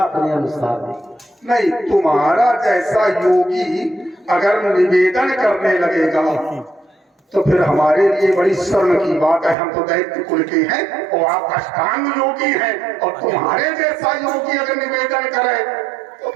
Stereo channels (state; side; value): drops out; left; at 9.6 s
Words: अनुसार दें। नहीं, तुम्हारा जैसा योगी अगर निवेदन करने लगेगा तो फिर हमारे लिए बड़ी शर्म की बात है। हम तो दैत्य कुल के हैं और आप अष्टांग योगी हैं, और तुम्हारे जैसा योगी अगर निवेदन करे तो